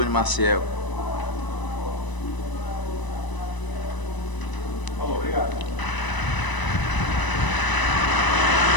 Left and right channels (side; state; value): right; late; 1.0 ms